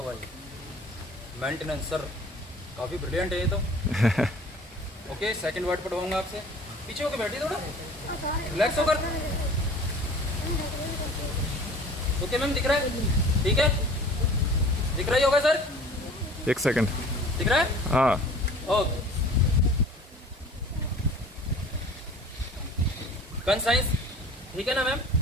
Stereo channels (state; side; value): normal; both; correlation 0.45